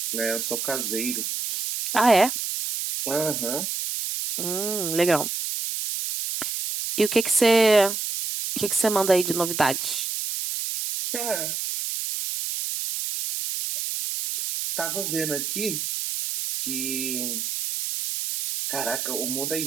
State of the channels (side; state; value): right; noise; hiss, 3 dB below the sound